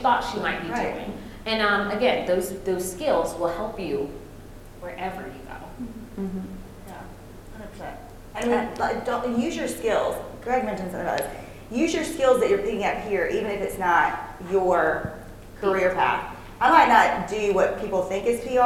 she might be doing. And again, those skills will help you wherever you go. Mm-hmm. I mean, don't use your skills. Greg mentioned something about this. Use your skills that you're picking up here, even if it's not your career path. I might not do what people think is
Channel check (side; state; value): both; identical; correlation 1.00